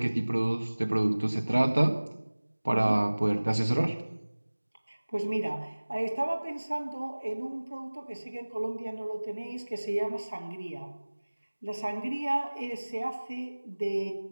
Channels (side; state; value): both; inverted; correlation -1.00